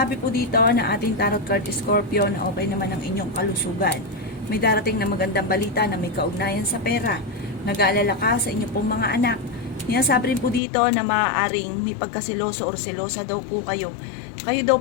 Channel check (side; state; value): right; drops out; at 10.6 s